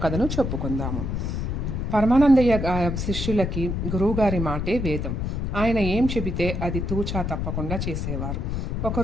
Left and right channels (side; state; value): left; noise; rumble, 2 dB below the sound